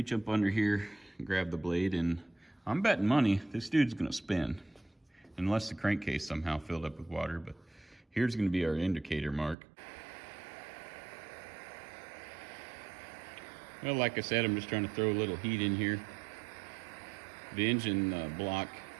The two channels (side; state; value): left; drops out; at 9.6 s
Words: up under here and grab the blade. And I'm betting money this dude's going to spin. Unless the crankcase somehow filled up with water. But here's going to be our indicator mark. Well, like I said, I'm just trying to throw a little heat in here. The engine block,